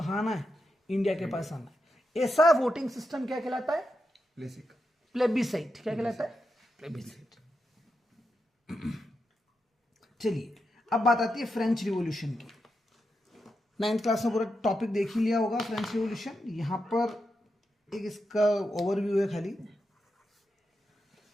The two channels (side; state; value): both; normal; correlation 0.86